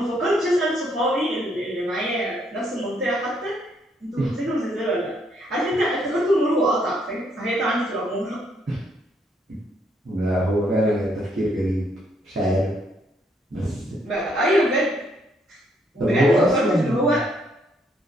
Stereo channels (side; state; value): both; normal; correlation 0.71